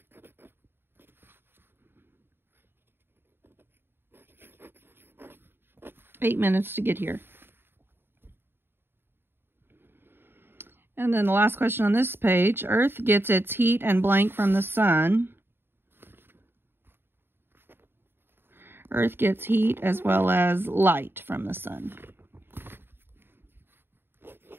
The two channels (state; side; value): late; left; 0.10 ms